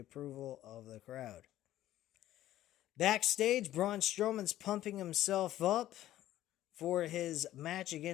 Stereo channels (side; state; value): right; quieter; 13.6 dB